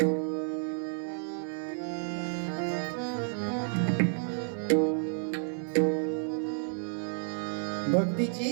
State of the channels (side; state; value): left; silent; digital silence